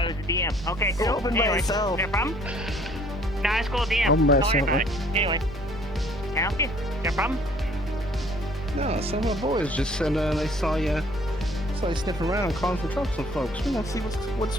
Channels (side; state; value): both; normal; correlation 0.58